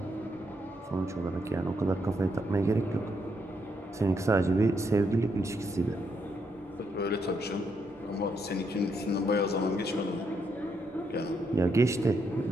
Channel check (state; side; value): normal; both; correlation 0.77